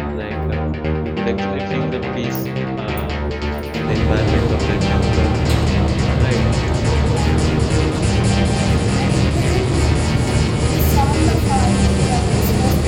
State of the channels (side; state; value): both; identical; correlation 1.00